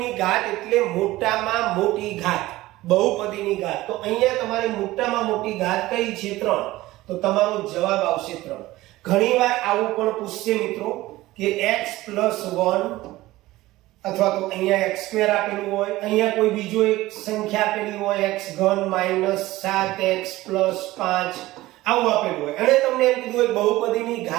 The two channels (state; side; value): quieter; left; 17.7 dB